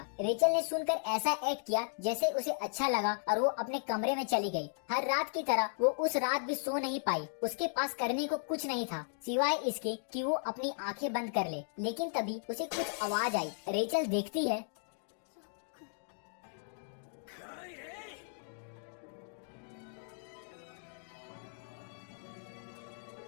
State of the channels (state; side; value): silent; right; digital silence